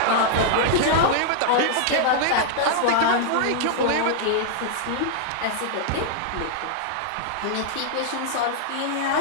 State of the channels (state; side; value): different; both; correlation -0.01